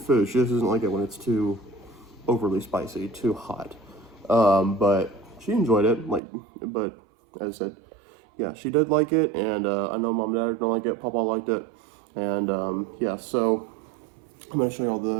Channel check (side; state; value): left; drops out; at 6.2 s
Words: She just doesn't like it when it's too overly spicy, too hot. But she enjoyed it. But as I said, yeah, she did like it, and I know Mom and Dad don't like it. Papa liked it, and yeah. So I'm gonna show you all